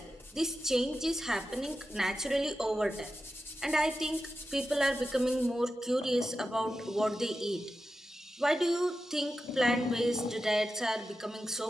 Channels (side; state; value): both; normal; correlation 0.91